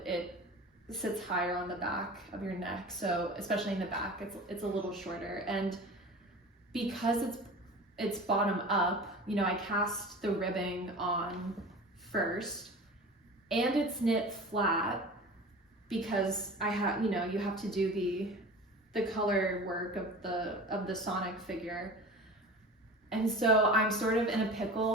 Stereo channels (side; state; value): both; normal; correlation 0.37